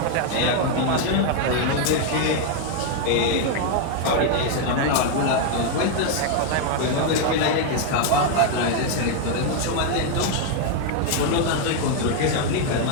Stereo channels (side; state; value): both; different; correlation 0.00